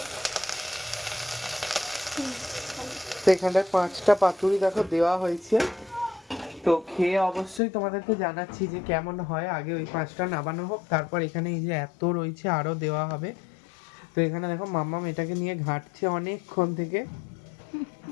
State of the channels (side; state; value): right; drops out; at 7.6 s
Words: তো এখানটায় 5টা পাতুরি দেখো দেওয়া হয়েছে। তো খেয়ে অবশ্যই তোমাদেরকে জানাচ্ছি যে কেমন হয়। আগে ওই 5টা নামানো হোক, তারপর এখানে এই যে এত রয়েছে আরো দেওয়া হবে। তো এখানে দেখো মাম্মাম এটাকে নিয়ে ঘাঁটছে অনেকক্ষণ থেকে।